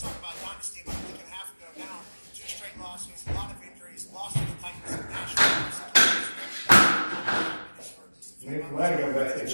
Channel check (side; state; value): both; inverted; correlation -1.00